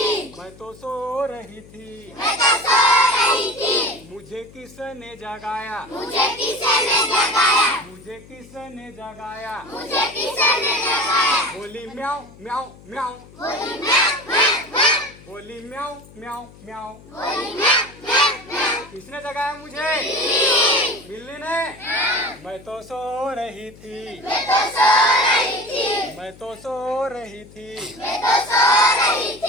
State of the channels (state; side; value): noise; left; hum, 22 dB below the sound